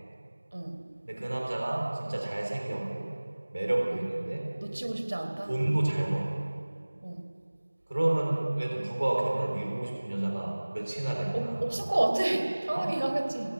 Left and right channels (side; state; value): both; inverted; correlation -1.00